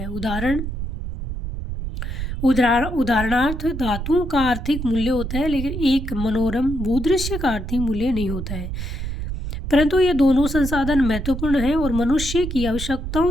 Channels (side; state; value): right; noise; rumble, 5 dB below the sound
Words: है। उदाहरणार्थ धातुओं का आर्थिक मूल्य होता है लेकिन एक मनोरम भूदृश्य का आर्थिक मूल्य नहीं होता है। परंतु ये दोनों संसाधन महत्वपूर्ण हैं और मनुष्य की